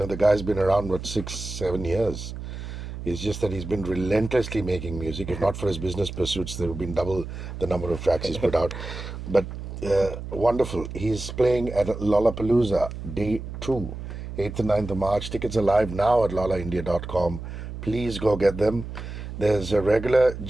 guy's been around 6-7 years. It's just that he's been relentlessly making music. If not for his business pursuits, there would have been double the number of tracks he's put out. But wonderful. He's playing at Lollapalooza Day 2, 8th and 9th of March. Tickets are live now at lollaindia.com. Please go get them. There's a regular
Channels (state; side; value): noise; right; hum, 9 dB below the sound